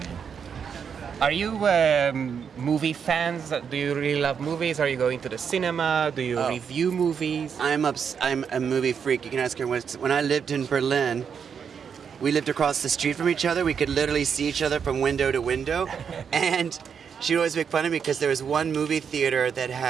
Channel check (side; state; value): left; quieter; 7.0 dB